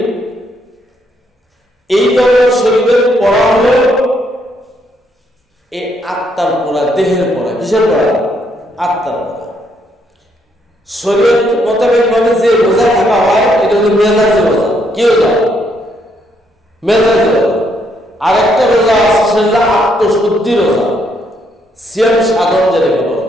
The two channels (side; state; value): both; normal; correlation 0.73